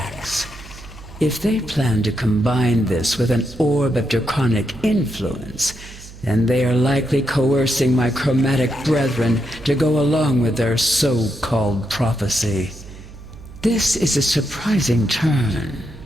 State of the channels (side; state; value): right; noise; hum, 17 dB below the sound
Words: If they plan to combine this with an orb of draconic influence, then they are likely coercing my chromatic brethren to go along with their so-called prophecy. This is a surprising turn,